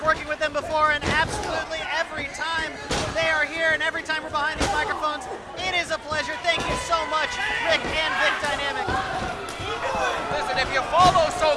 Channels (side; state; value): both; identical; correlation 1.00